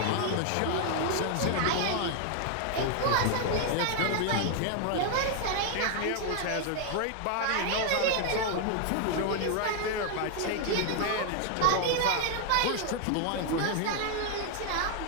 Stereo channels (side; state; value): both; different; correlation 0.00